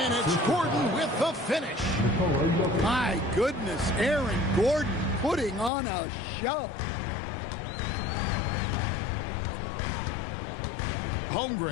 it's Gordon with the finish. My goodness, Aaron Gordon putting on a show.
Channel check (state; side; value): drops out; right; at 5.7 s